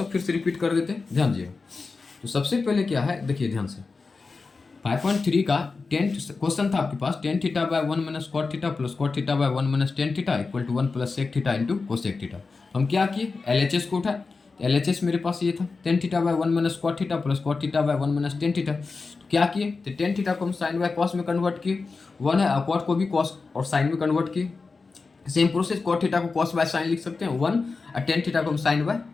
फिर से रिपीट कर देते हैं, ध्यान दीजिएगा। तो सबसे पहले क्या है देखिए ध्यान से, 5.3 का 10 क्वेश्चन था आपके पास, tan theta by 1 minus cot theta plus cot theta by 1 minus tan theta equal to 1 plus sec theta into cosec theta. हम क्या किए LHS को उठाए, तो LHS मेरे पास ये था tan theta by 1 minus cot theta plus cot theta by 1 minus tan theta. तो क्या किए, तो टेन थीटा को हम साइन बाय कॉस में कन्वर्ट किए, 1 है, और कॉट को भी कॉस और साइन में कन्वर्ट किए। सेम प्रोसेस कॉट थीटा को कॉस बाय साइन लिख सकते हैं 1, और टेन थीटा को हम साइन बाय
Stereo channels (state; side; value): quieter; right; 4.2 dB